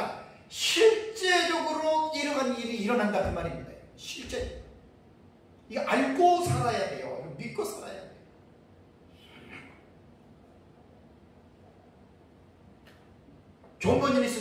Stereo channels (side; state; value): both; identical; correlation 1.00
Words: 실제적으로 이러한 일이 일어난다 그 말입니다. 실제 이거 알고 살아야 돼요. 이거 믿고 살아야 돼요. 존 버니니